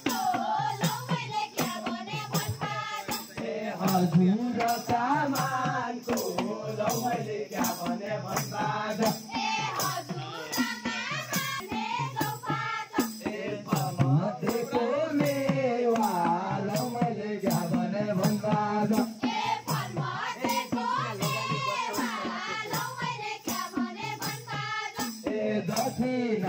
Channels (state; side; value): identical; both; correlation 1.00